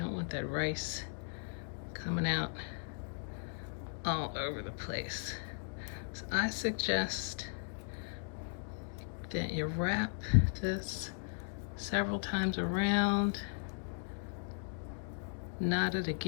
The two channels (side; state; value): right; silent; digital silence